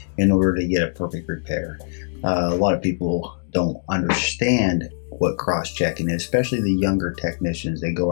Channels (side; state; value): right; silent; digital silence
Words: in order to get a perfect repair. A lot of people don't understand what cross-checking is, especially the younger technicians. They go